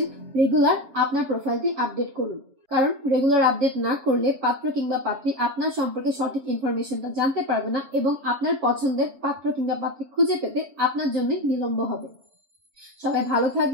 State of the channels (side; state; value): left; late; 7.1 ms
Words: রেগুলার আপনার প্রোফাইলটি আপডেট করুন, কারণ রেগুলার আপডেট না করলে পাত্র কিংবা পাত্রী আপনার সম্পর্কে সঠিক ইনফরমেশনটা জানতে পারবে না এবং আপনার পছন্দের পাত্র কিংবা পাত্রী খুঁজে পেতে আপনার জন্য বিলম্ব হবে। সবাই ভালো